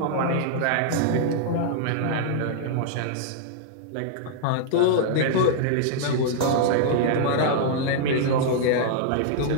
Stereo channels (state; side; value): different; both; correlation -0.01